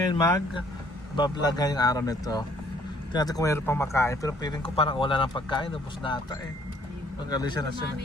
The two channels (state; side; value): normal; both; correlation 0.62